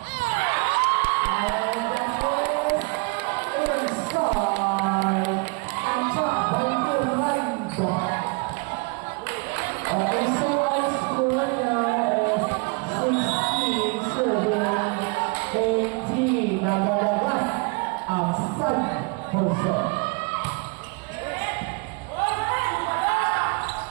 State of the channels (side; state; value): left; quieter; 30.8 dB